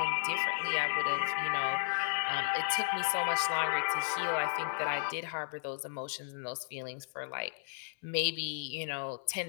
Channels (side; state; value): right; silent; 55 dB below the other